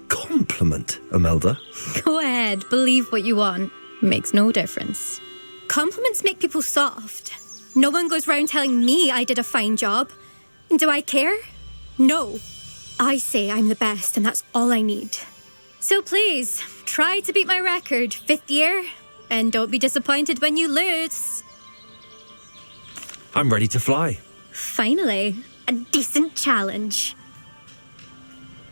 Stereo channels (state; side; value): inverted; both; correlation -1.00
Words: compliment, Imelda? Go ahead, believe what you want. Makes no difference. Compliments make people soft. No one goes round telling me I did a fine job. And do I care? No. I say I'm the best and that's all I need. So please, try to beat my record, 5th year, and don't be disappointed when you lose. I'm ready to fly. Finally, a decent challenge.